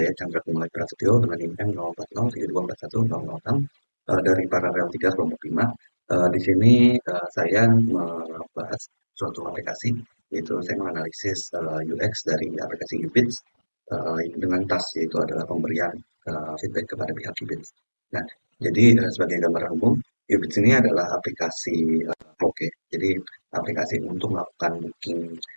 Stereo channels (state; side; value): inverted; both; correlation -1.00